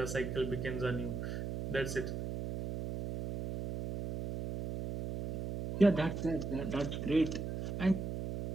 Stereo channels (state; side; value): noise; right; hum, 4 dB below the sound